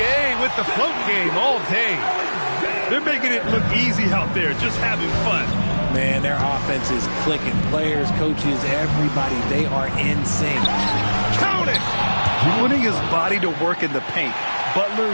with the float game all day. They're making it look easy out there, just having fun. Man, their offense is clicking. Players, coaches, everybody, they are in sync. Count it! Putting his body to work in the paint. Butler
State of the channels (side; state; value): both; inverted; correlation -1.00